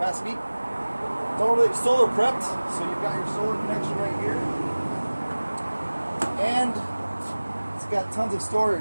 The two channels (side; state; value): both; inverted; correlation -1.00